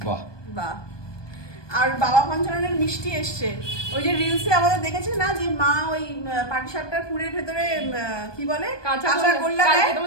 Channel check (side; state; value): right; late; 1.2 ms